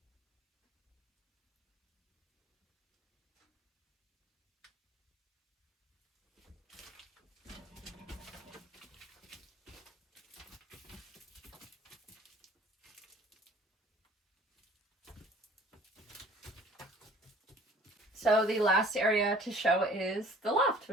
So the last area to show is the loft,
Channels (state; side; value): normal; both; correlation 0.51